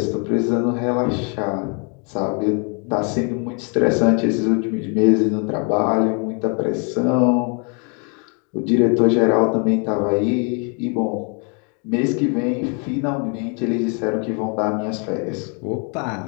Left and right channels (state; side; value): quieter; right; 37.0 dB